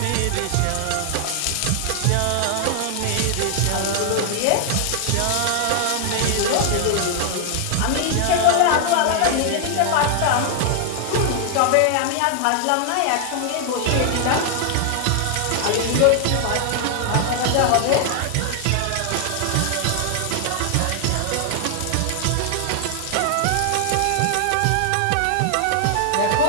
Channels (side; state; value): both; different; correlation 0.00